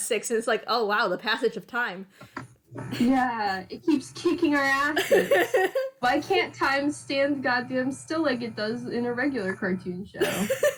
6, and it's like, oh wow, the passage of time. Yeah, it keeps kicking our asses. Why can't time stand goddamn still like it does in a regular cartoon show?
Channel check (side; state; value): both; identical; correlation 1.00